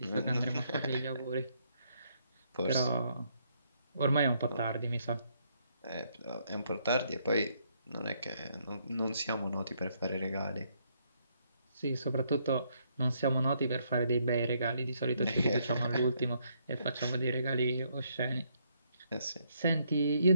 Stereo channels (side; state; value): both; inverted; correlation -0.72